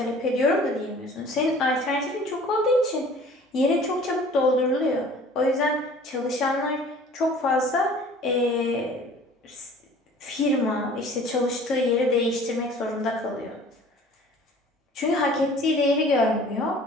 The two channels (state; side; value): normal; both; correlation 0.48